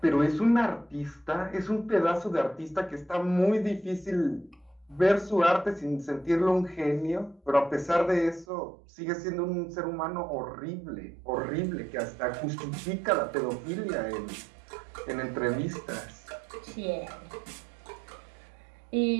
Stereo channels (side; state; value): left; drops out; at 8.5 s